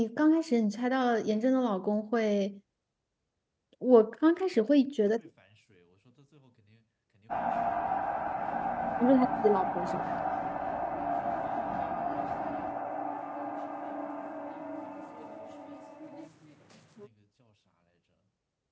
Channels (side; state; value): both; identical; correlation 1.00